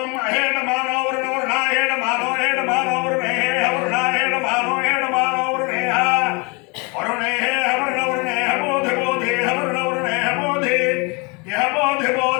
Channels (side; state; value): right; quieter; 29.8 dB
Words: అహేణ మానో వరుణాహేణ మానో హేణ మానో వరుణే వరుణాహేణ మానో హేణ మానో వరుణే వరుణే వరుణ వరుణే బోధి బోధి వరుణ వరుణే బోధి యహ బోధి